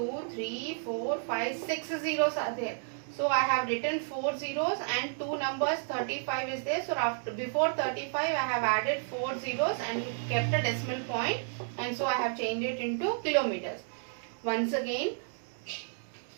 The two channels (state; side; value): silent; left; digital silence